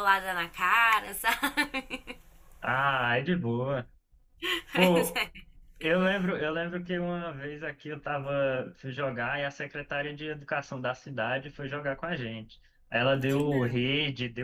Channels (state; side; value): identical; both; correlation 1.00